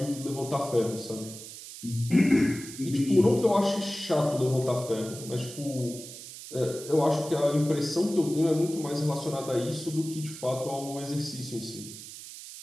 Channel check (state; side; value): noise; right; hiss, 13 dB below the sound